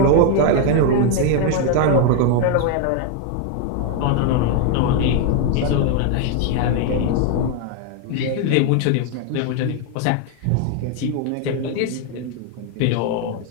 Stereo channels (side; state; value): both; different; correlation 0.01